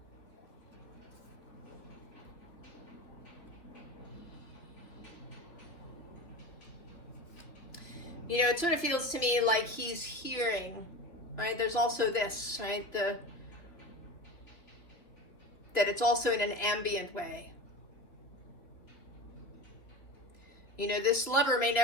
You know, it sort of feels to me like he's hearing, right? There's also this, right? That it's also in an ambient way. You know, this lover may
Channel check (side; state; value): right; late; 2.9 ms